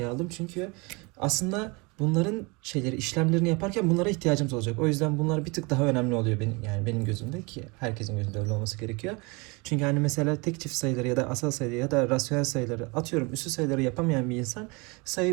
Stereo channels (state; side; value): quieter; left; 27.9 dB